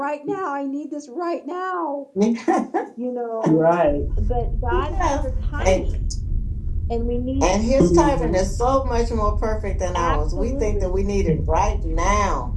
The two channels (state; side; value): identical; both; correlation 1.00